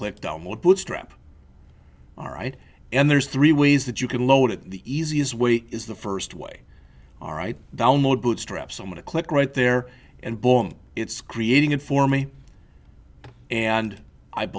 Download Bootstrap. All right? And there's three ways that you can load it. The easiest way is the first way. All right, download Bootstrap. So I'm going to click right there, and boom, it's creating it for me. And I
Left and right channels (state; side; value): identical; both; correlation 1.00